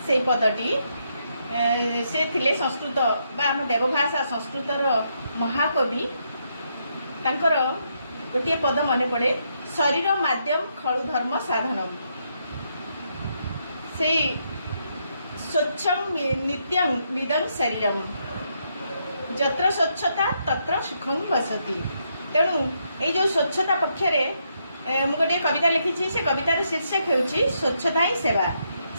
से पदटी से थिले संस्कृत आम देवभाषा संस्कृतर महाकवि। तांकर गोटे पद मन पड़े शरीर माध्यम खलु धर्म साधनम। से स्वच्छम नित्यं निदं शरीरम जत्र स्वच्छता तत्र सुखं वसति। तेणु ये जो स्वच्छता पक्षरे मु गोटे कविता लिखी। से कवितार शीर्षक होउछि स्वच्छता ही सेवा,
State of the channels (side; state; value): both; inverted; correlation -0.77